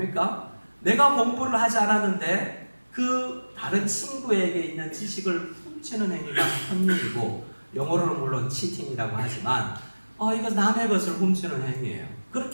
내가 공부를 하지 않았는데 그 다른 친구에게 있는 지식을 훔치는 행위가 컨닝이고, 영어로는 물론 치팅이라고 하지만 이거 남의 것을 훔치는 행위예요.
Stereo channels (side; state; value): both; inverted; correlation -1.00